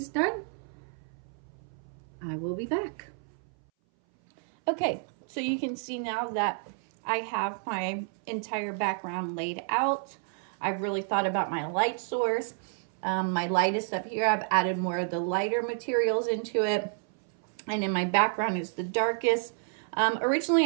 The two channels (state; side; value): silent; left; 58 dB below the other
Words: done, I will be back. Okay, so you can see now that I have my entire background laid out. I've really thought about my light source. My light is up here. I've added more of the lighter materials into it. And in my background is the darkest.